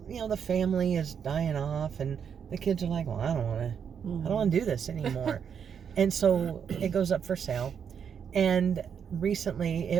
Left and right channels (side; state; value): left; quieter; 7.4 dB